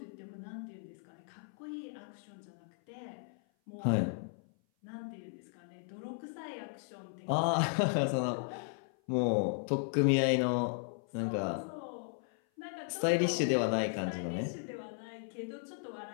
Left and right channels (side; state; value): right; silent; 54 dB below the other